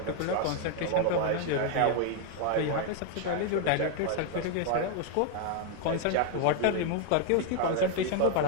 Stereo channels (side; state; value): both; different; correlation 0.00